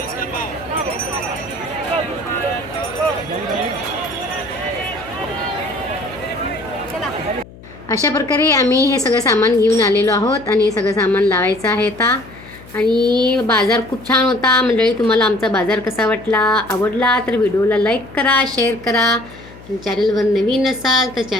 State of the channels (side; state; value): left; noise; hum, 20 dB below the sound